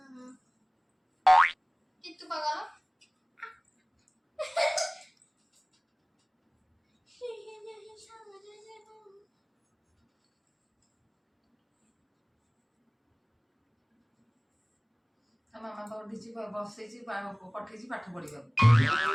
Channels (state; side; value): identical; both; correlation 1.00